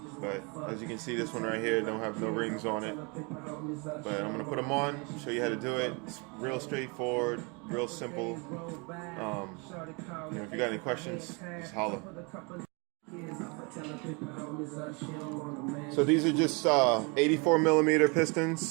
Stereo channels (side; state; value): left; quieter; 30.9 dB